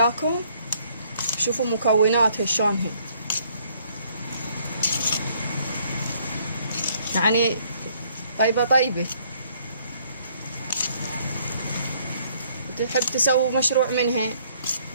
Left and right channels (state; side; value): inverted; both; correlation -0.64